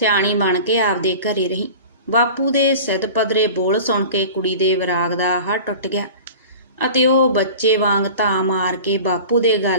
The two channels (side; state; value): both; inverted; correlation -0.38